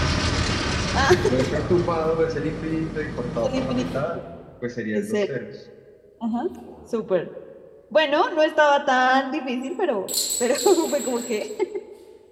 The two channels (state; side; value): identical; both; correlation 1.00